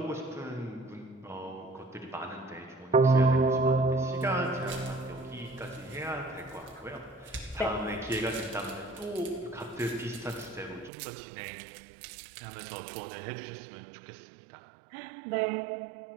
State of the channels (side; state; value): left; drops out; at 10.9 s